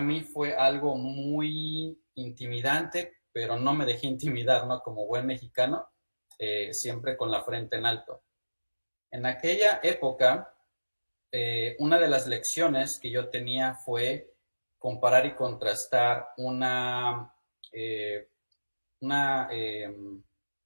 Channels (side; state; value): both; inverted; correlation -1.00